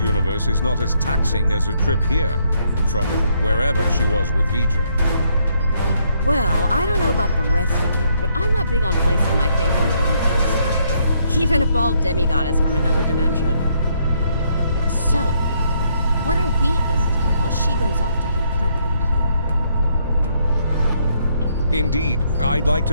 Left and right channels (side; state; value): both; inverted; correlation -0.71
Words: is not as taxing as her trip here, from wherever she was with Vidra. Well, I don't know about the rest of you, but I'm not big on placing my faith in one person. Even a bald demigoddess from another dimension. So, what are we gonna do while she goes off to confront the other? Indeed, I'd like to